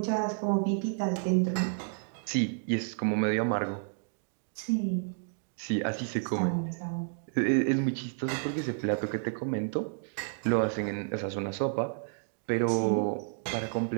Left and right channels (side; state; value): left; silent; digital silence